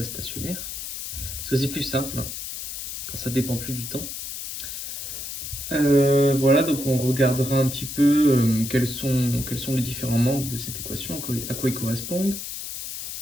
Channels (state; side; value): noise; left; hiss, 7 dB below the sound